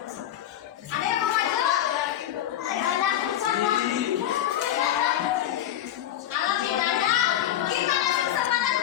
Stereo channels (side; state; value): right; quieter; 11.8 dB